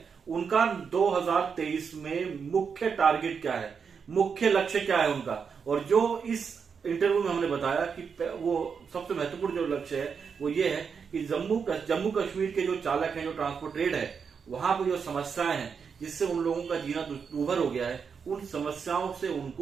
उनका 2023 में मुख्य टारगेट क्या है, मुख्य लक्ष्य क्या है उनका। और जो इस इंटरव्यू में हमने बताया कि वो सबसे महत्वपूर्ण जो लक्ष्य है वो ये है कि जम्मू कश्मीर के जो चालक हैं, जो ट्रांसपोर्ट ट्रेड है, वहां पर जो समस्याएं हैं जिससे उन लोगों का जीना दुर्भर हो गया है, उन समस्याओं से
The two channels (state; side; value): quieter; left; 6.2 dB